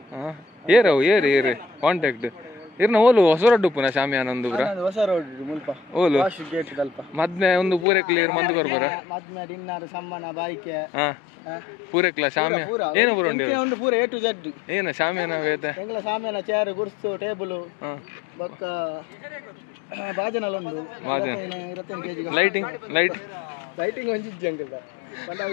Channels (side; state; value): right; drops out; at 7.9 s